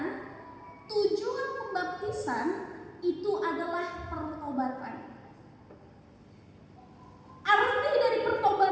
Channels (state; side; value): identical; both; correlation 1.00